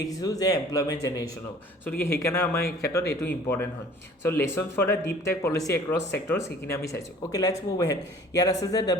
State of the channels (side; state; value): both; normal; correlation 0.50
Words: যে এমপ্লয়মেণ্ট জেনেৰেশ্যন হ'ব। গতিকে সেইকাৰণে আমাৰ এই ক্ষেত্ৰত এইটো ইম্পৰ্টেণ্ট হয়। Lesson for the deep tech policy across sector, সেইখিনি আমি চাইছোঁ। Okay, let's move ahead. ইয়াত আছে যে the